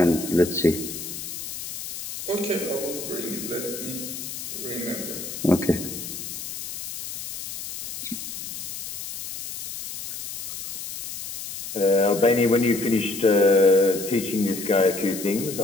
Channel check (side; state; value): left; noise; hiss, 8 dB below the sound